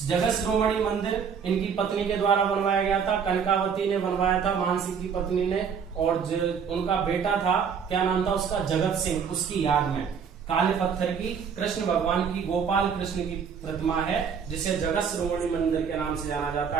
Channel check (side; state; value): left; quieter; 6.8 dB